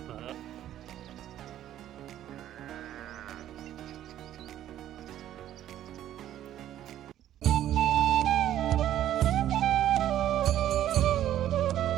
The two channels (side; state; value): left; quieter; 12.0 dB